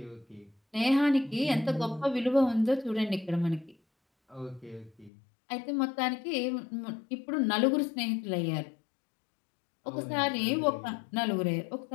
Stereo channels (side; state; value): right; drops out; at 5.1 s